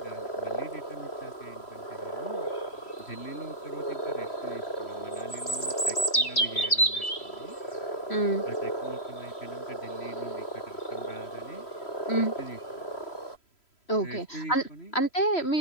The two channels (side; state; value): right; late; 3.1 ms